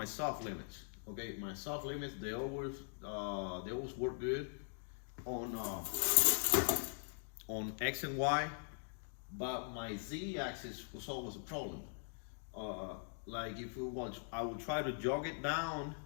soft limits. Okay, my soft limits they always work good on X and Y, but my Z axis was always a problem. Like I would try to jog it down.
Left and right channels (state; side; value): silent; right; digital silence